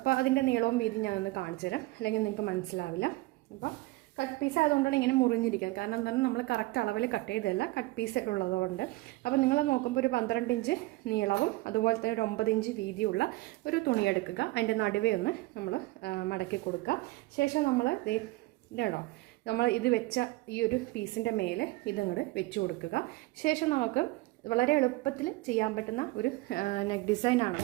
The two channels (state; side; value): quieter; left; 20.4 dB